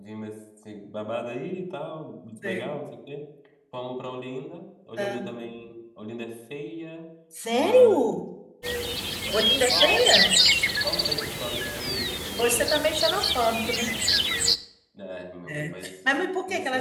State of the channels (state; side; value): identical; both; correlation 1.00